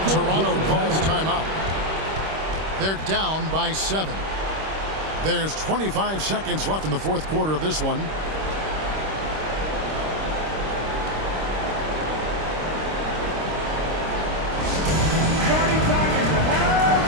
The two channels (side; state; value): left; late; 26 ms